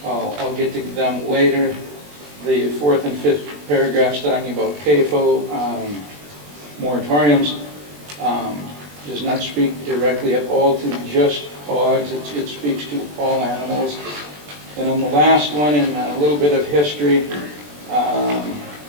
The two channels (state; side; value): late; left; 20 ms